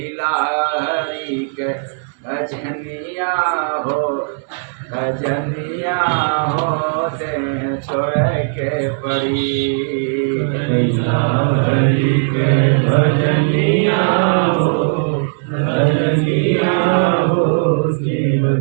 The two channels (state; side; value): silent; left; digital silence